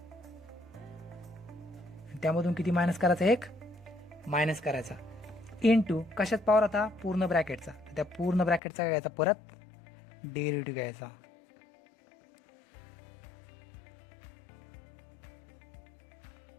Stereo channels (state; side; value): drops out; right; at 8.6 s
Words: त्यामधून किती मायनस करायचा, एक मायनस करायचा. इनटू कशात पॉवर होता, पूर्ण ब्रॅकेटचा, तर त्या पूर्ण ब्रॅकेटचा काय घ्यायचा, परत डेरिव्हेटिव्ह घ्यायचा.